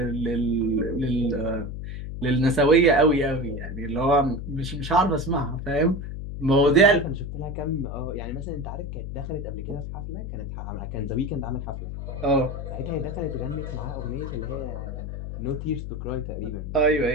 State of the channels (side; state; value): left; noise; hum, 7 dB below the sound